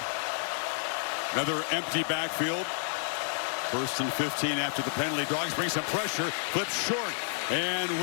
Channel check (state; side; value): silent; right; digital silence